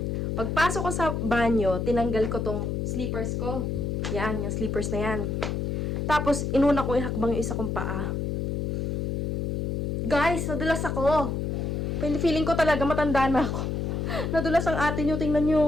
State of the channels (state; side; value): noise; left; hum, 1 dB below the sound